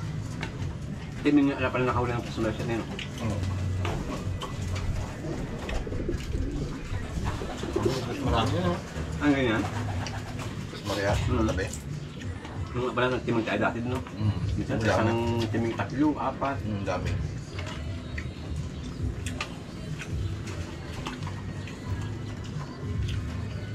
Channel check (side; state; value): both; identical; correlation 1.00